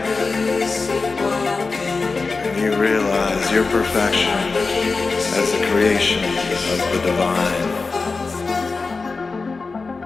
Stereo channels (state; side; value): quieter; right; 4.1 dB